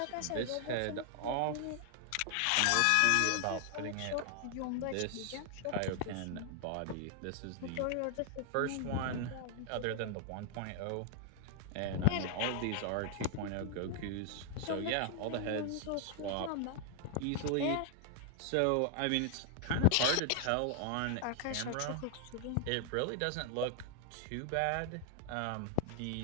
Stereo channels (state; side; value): different; both; correlation 0.00